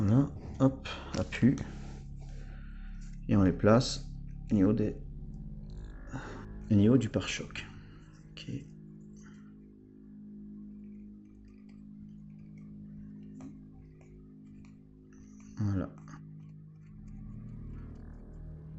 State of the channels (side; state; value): both; identical; correlation 1.00